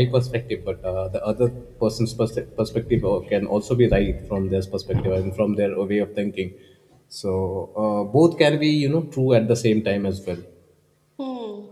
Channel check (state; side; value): identical; both; correlation 1.00